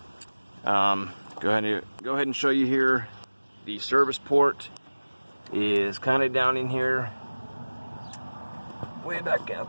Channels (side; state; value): both; inverted; correlation -1.00